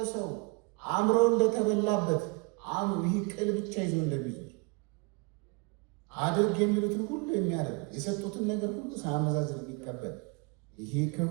ሰው አእምሮ እንደተበላበት ይህ ቅል ብቻ ይዞ እንደሚዞር አድርግ የሚሉትን ሁሉ የሚያደርግ የሰጡትን ነገር ሁሉ ሳያመዛዝን የሚቀበል ይሄ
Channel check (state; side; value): quieter; left; 29.6 dB